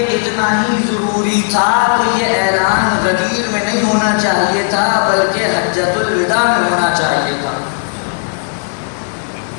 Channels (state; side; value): silent; right; digital silence